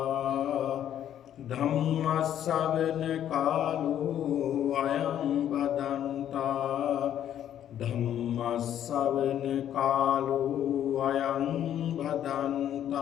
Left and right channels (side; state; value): right; quieter; 10.5 dB